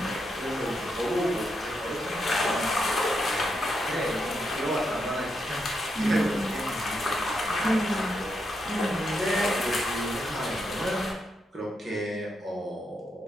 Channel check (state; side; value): normal; both; correlation 0.82